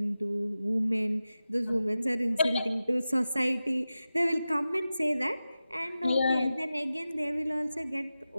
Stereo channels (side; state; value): both; inverted; correlation -0.94